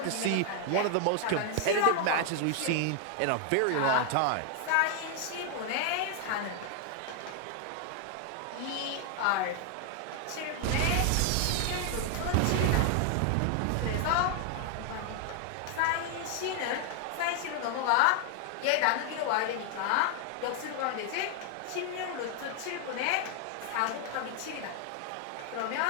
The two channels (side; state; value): both; different; correlation 0.00